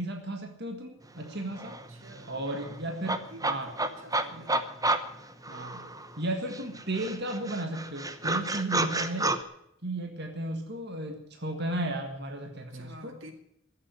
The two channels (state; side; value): normal; both; correlation 0.23